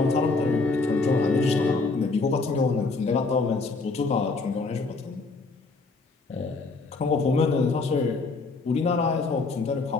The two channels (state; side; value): quieter; right; 3.8 dB